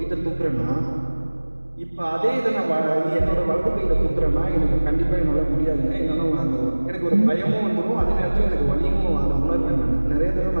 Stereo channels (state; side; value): inverted; both; correlation -1.00